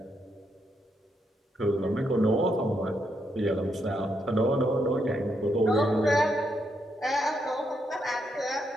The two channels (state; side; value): normal; both; correlation 0.79